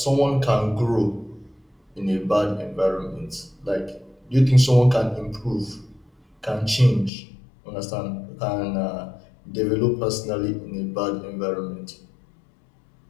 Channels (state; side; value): drops out; right; at 7.1 s